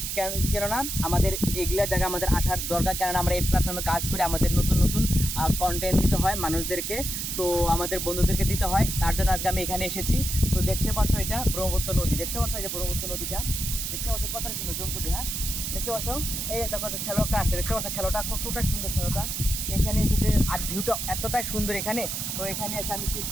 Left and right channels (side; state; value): right; noise; hiss, 3 dB below the sound